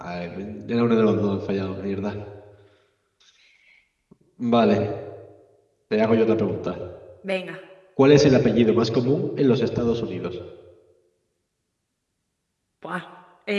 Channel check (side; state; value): both; identical; correlation 1.00